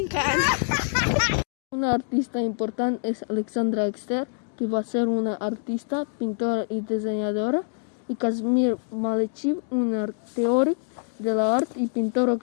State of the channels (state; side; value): silent; right; digital silence